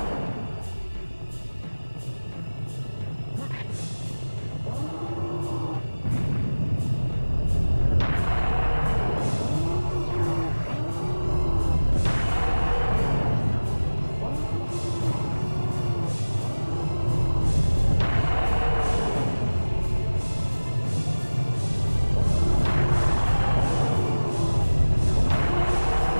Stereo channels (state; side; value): inverted; both; correlation -1.00